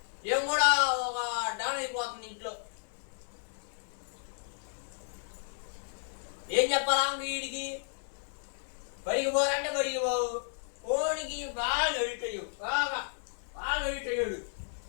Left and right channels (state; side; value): silent; right; 56 dB below the other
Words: ఏం కూడా ఒక డాన్ అయిపోతుంది ఇంట్లో. ఏం చెప్పాలా వీడికి? బడికి పోవాలంటే బడికి పోవు, ఫోన్కి బాగా ఎడిట్ అయ్యు, బాగా ఎడిట్ అయ్యాడు.